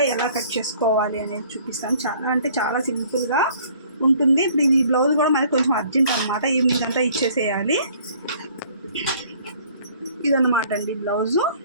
ఎలా కట్ చేసుకోవాలి అనేది చూపిస్తాను. చాలా సింపుల్గా ఉంటుంది. ఇప్పుడు ఈ బ్లౌజ్ కూడా మనకి కొంచెం అర్జెంట్ అనమాట, ఈవినింగ్ అంతా ఇచ్చేసేయాలి. ఇదన్నమాట అండి బ్లౌజు.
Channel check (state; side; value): inverted; both; correlation -0.56